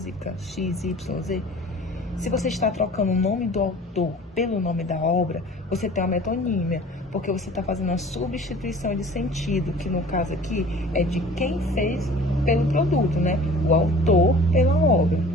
XYZ, se você está trocando o nome do autor pelo nome da obra, você tem uma metonímia, porque você está fazendo uma substituição de sentido, que no caso aqui é de quem fez pelo produto, né? O autor pela obra.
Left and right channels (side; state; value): both; normal; correlation 0.45